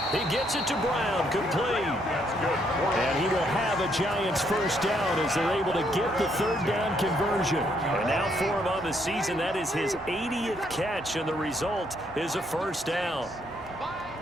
He gets it to Brown, complete. That's good. And he will have a Giants first down as they're able to get the 3rd down conversion. And now for him on the season, that is his 80th catch, and the result is a first down.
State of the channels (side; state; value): both; normal; correlation 0.72